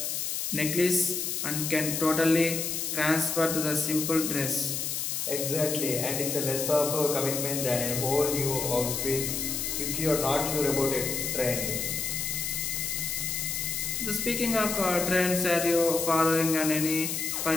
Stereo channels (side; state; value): left; noise; hiss, 2 dB below the sound